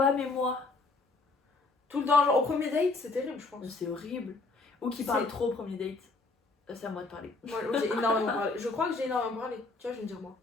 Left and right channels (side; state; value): right; quieter; 3.6 dB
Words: mais moi. Tout le temps, genre, au premier date, c'est terrible, je pense. C'est horrible. Ou qui parle C'est- trop au premier date. C'est à moi de parler. Moi, j'ai énormément parlé. Je crois que j'ai énormément parlé. Tu vois, je vais me dire moi.